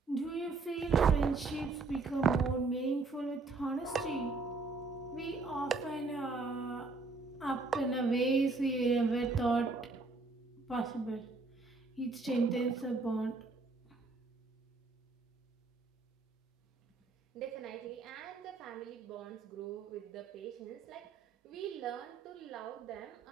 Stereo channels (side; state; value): left; quieter; 3.8 dB